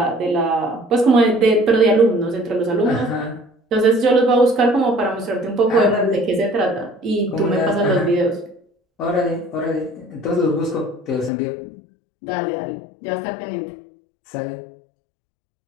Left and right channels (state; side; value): drops out; right; at 11.3 s